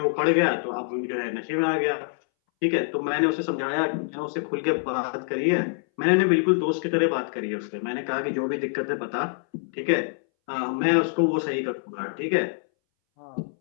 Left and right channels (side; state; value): right; silent; 61 dB below the other